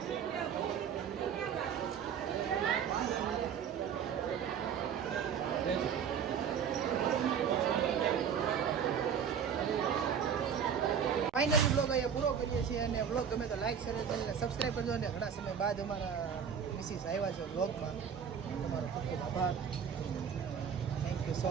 ફાઇનલી બ્લોગ અહીંયા પૂરો કરીએ છીએ અને બ્લોગ ગમે તો લાઈક શેર ચેનલને સબસ્ક્રાઈબ કરજો અને ઘણા સમય બાદ અમારા મિસિસ આવ્યા છે બ્લોગમાં તમારો ખૂબ ખૂબ આભાર થેન્ક યુ સો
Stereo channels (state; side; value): quieter; left; 7.6 dB